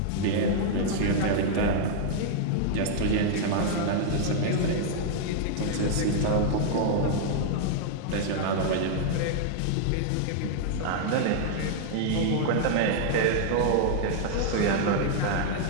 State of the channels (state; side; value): different; both; correlation -0.01